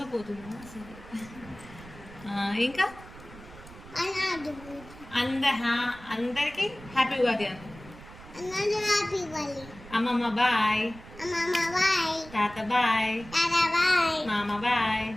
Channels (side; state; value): right; noise; rumble, 18 dB below the sound